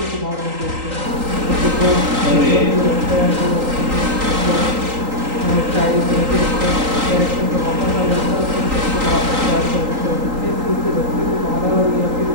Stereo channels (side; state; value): left; late; 3.8 ms